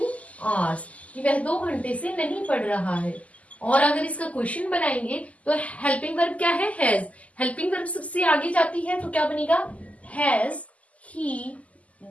hours, कि वह 2 घंटे से नहीं पढ़ रहा है। और अगर इसका क्वेश्चन बनाएंगे तो हेल्पिंग वर्ब क्या है, हैज। हेल्पिंग वर्ब सबसे आगे जाती है तो क्या बनेगा, has he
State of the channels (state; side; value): late; right; 0.070 ms